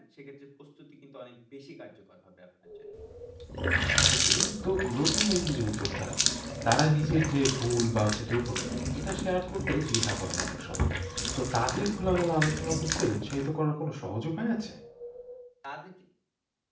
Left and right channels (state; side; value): identical; both; correlation 1.00